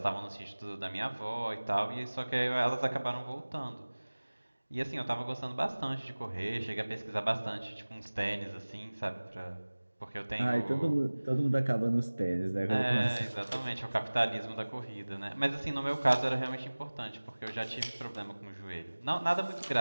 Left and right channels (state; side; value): inverted; both; correlation -1.00